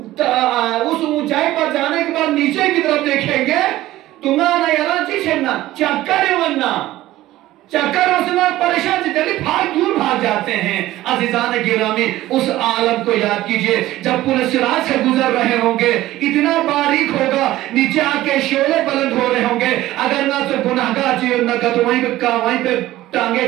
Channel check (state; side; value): quieter; left; 15.7 dB